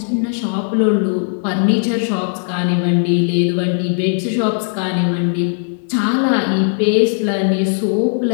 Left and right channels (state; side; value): silent; right; 68 dB below the other